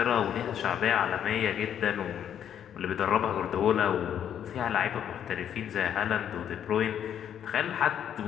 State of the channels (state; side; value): quieter; right; 9.4 dB